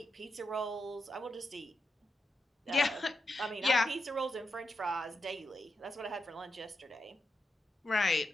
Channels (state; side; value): normal; both; correlation 0.86